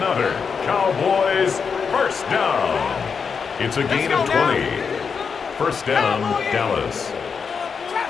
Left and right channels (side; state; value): right; quieter; 5.9 dB